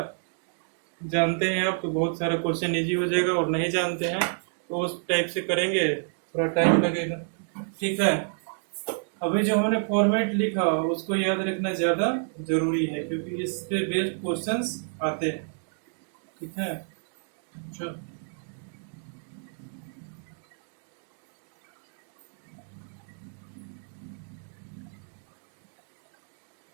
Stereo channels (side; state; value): left; silent; digital silence